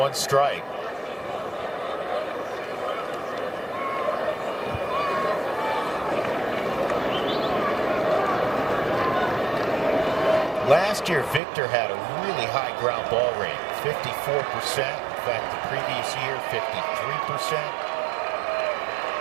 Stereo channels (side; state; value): left; drops out; at 11.4 s